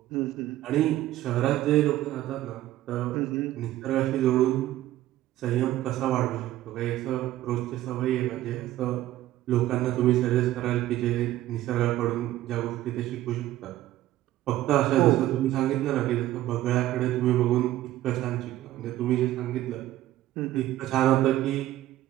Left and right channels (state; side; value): quieter; left; 14.4 dB